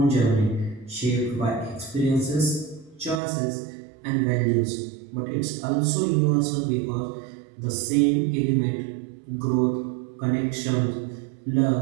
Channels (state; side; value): drops out; left; at 3.2 s